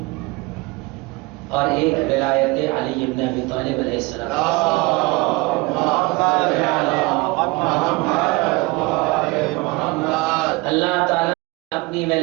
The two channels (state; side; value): quieter; left; 24.2 dB